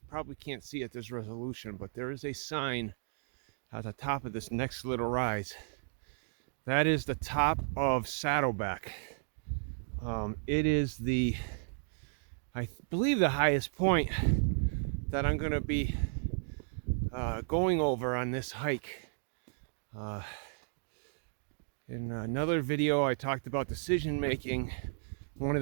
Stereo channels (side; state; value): left; silent; digital silence